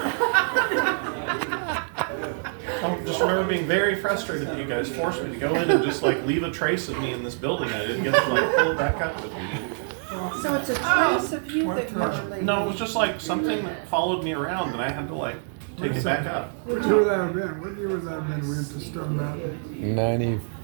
I just remember being very frustrated that you guys forced me to go in and just like leave a trace of me in this building, and I didn't get to like pull it back up with me. So it's a trace of you that you're leaving. No, it was just like something that followed me around, and I had to like take it back up. What year would that have been? What year was that when we went to Stone Mountain?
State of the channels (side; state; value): left; silent; 61 dB below the other